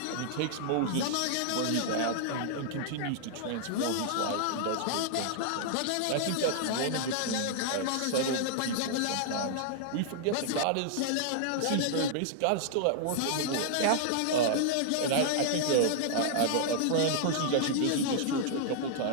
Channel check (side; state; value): both; different; correlation -0.01